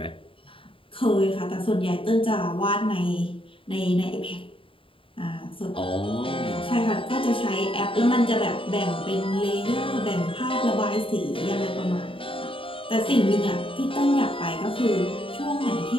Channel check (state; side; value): late; right; 0.26 ms